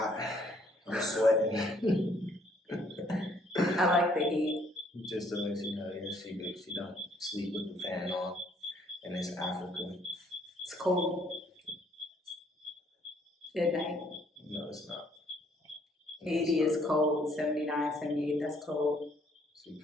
I'm sweating. I like the heat. Just to let you know, yeah, she don't sleep with the fan on, and it's Africa. It's cold. Good night. No, it's not. 80 is cold, 79, 78, that's cold. She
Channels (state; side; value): normal; both; correlation 0.65